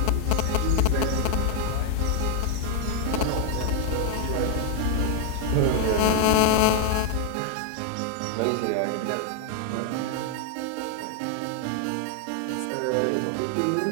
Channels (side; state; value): both; different; correlation 0.00